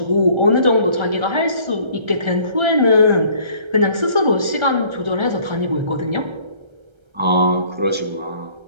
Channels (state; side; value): late; left; 1.3 ms